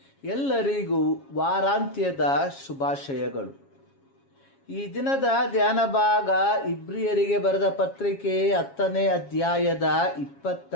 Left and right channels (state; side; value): late; right; 7.3 ms